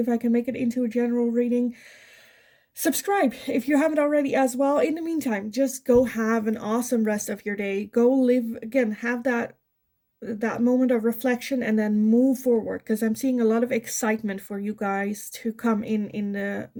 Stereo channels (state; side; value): identical; both; correlation 1.00